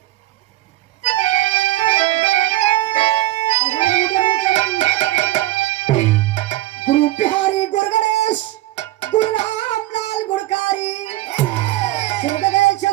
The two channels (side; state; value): left; quieter; 16.2 dB